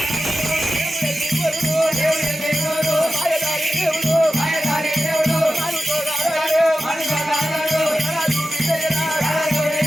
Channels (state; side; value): normal; both; correlation 0.93